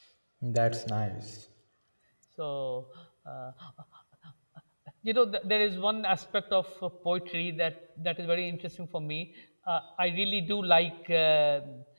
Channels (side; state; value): both; inverted; correlation -1.00